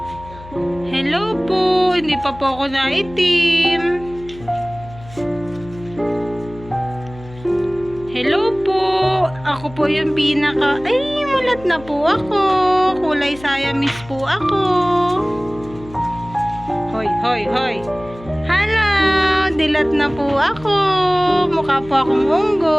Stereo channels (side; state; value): left; noise; hum, 18 dB below the sound